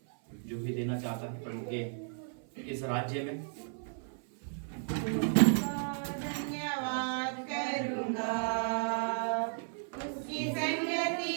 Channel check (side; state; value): left; silent; 55 dB below the other